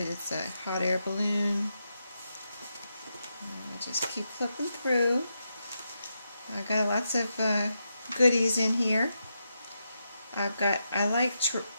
It's a hot air balloon. I'll just keep flipping through. I got lots of goodies in here. I like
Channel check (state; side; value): inverted; both; correlation -0.85